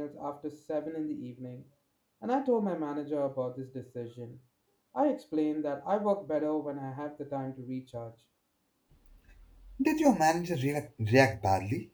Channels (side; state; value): both; identical; correlation 1.00